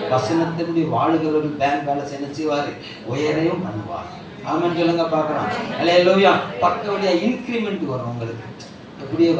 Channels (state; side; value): identical; both; correlation 1.00